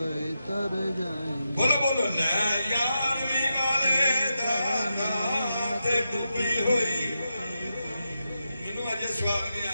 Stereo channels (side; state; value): both; inverted; correlation -0.88